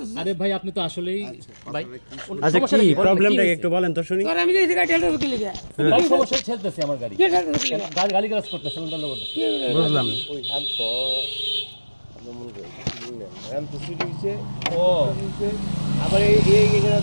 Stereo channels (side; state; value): both; inverted; correlation -1.00